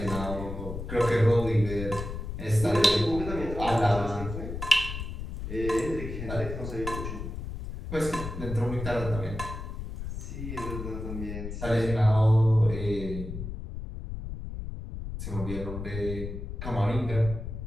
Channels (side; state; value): left; noise; rumble, 7 dB below the sound